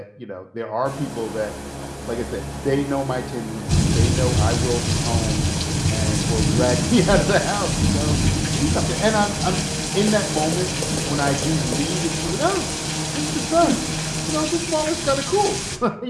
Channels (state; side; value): identical; both; correlation 1.00